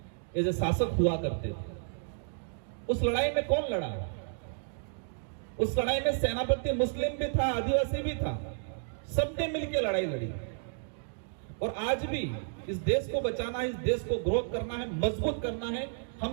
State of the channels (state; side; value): silent; left; digital silence